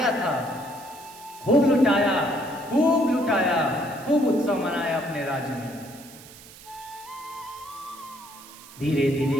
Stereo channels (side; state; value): right; noise; hiss, 19 dB below the sound